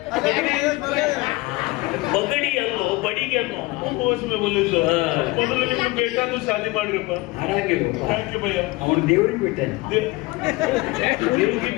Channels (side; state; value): right; quieter; 21.9 dB